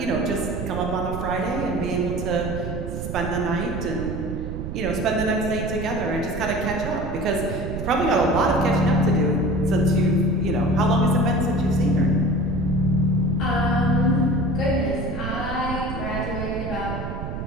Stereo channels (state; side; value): noise; right; rumble, 6 dB below the sound